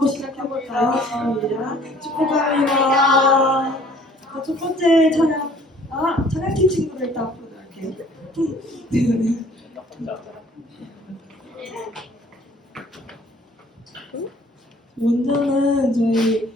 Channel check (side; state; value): both; normal; correlation 0.55